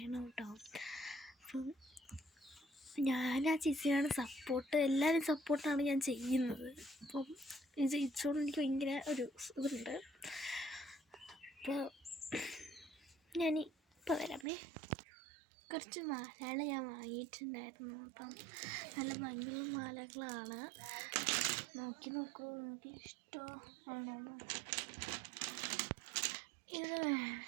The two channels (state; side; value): drops out; left; at 14.5 s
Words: കേട്ടോ. അപ്പം ഞാൻ ആ ചേച്ചിയാണ് സപ്പോർട്ട്, എല്ലാവരും സപ്പോർട്ടാണ് ഞാൻ ചെയ്യുന്നത്. അപ്പം ഇത് ജയിച്ചോണ്ട് എനിക്ക് ഭയങ്കര ഒരു ഇതുണ്ട്. അപ്പോൾ ഞാനിപ്പോൾ വരാമേ. കുറച്ച് മാലകൾ ഞാൻ വാങ്ങിയിട്ടുണ്ടായിരുന്നു. അപ്പം നല്ല ഭംഗിയുള്ള മാലകളാണ്. നോക്കൂ, എനിക്ക് ഇഷ്ടമാണോ. ഇത്